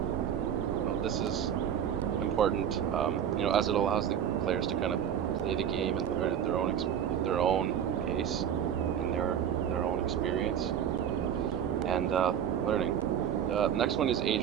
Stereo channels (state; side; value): quieter; left; 9.1 dB